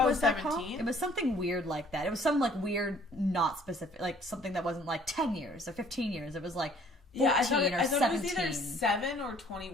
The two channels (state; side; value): normal; both; correlation 0.57